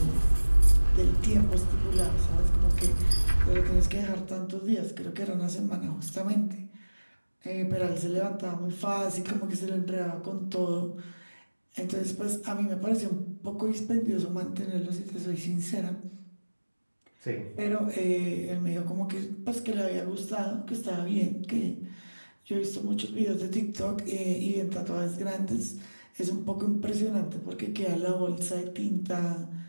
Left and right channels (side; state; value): both; inverted; correlation -1.00